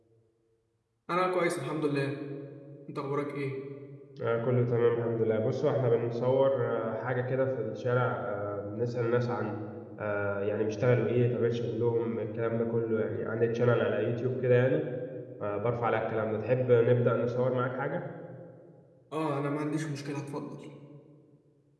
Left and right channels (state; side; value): identical; both; correlation 1.00